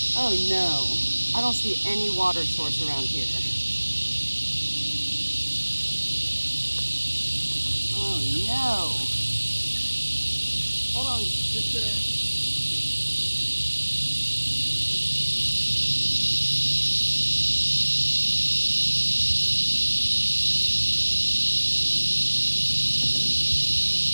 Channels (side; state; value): both; inverted; correlation -1.00